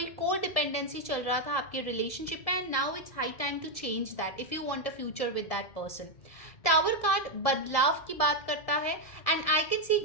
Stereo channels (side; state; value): right; late; 1.7 ms